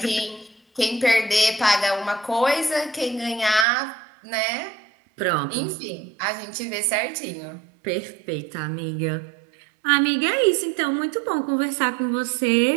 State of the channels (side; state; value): left; drops out; at 3.7 s